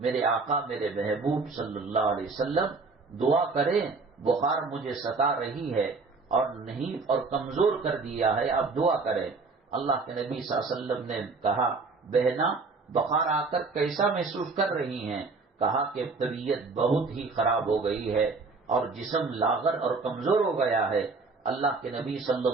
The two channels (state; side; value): quieter; left; 4.1 dB